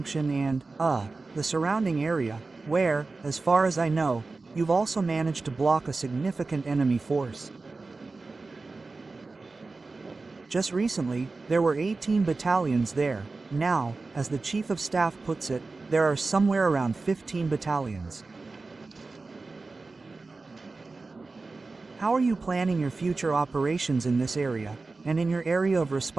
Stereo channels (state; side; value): quieter; left; 3.7 dB